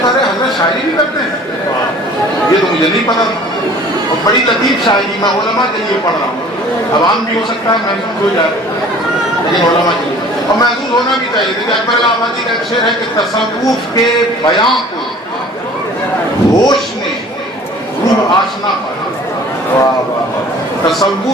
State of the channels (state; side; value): normal; both; correlation 0.48